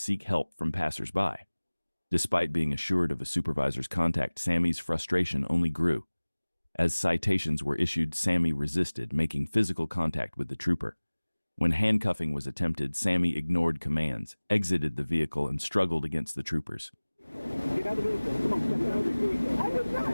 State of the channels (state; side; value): inverted; both; correlation -1.00